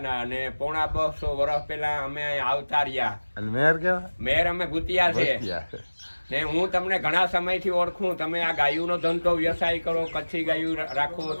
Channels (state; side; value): inverted; both; correlation -1.00